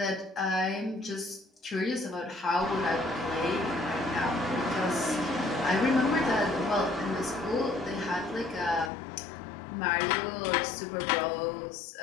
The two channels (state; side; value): drops out; right; at 8.9 s